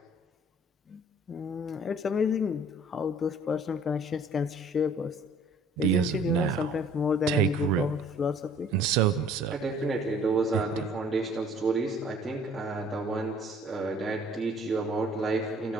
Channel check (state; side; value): normal; both; correlation 0.54